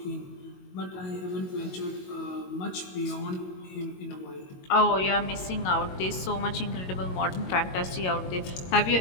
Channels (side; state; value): right; late; 22 ms